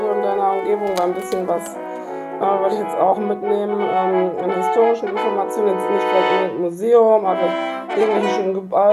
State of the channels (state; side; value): identical; both; correlation 1.00